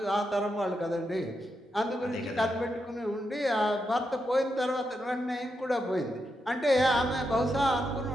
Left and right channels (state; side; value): normal; both; correlation 0.84